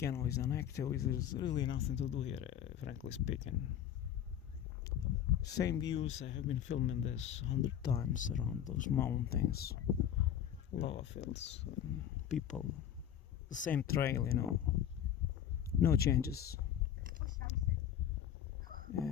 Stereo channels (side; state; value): right; quieter; 10.1 dB